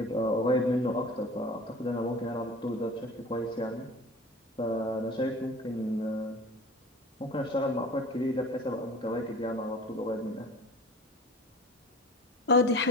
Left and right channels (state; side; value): normal; both; correlation 0.41